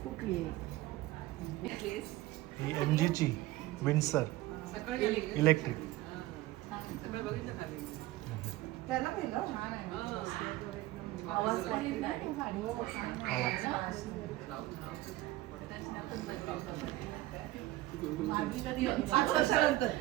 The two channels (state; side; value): quieter; left; 17.2 dB